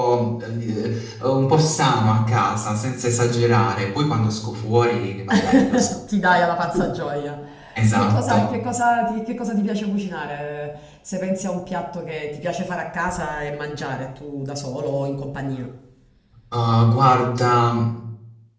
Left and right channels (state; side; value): identical; both; correlation 1.00